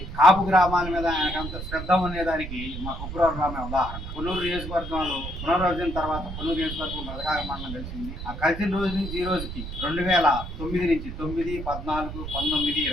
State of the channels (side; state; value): right; noise; rumble, 8 dB below the sound